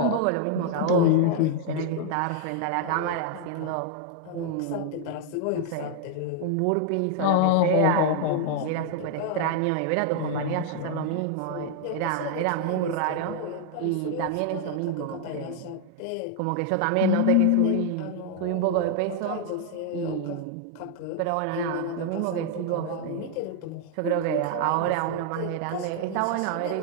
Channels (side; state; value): both; different; correlation 0.00